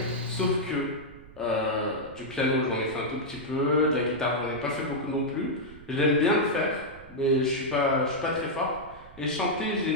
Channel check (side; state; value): right; noise; rumble, 20 dB below the sound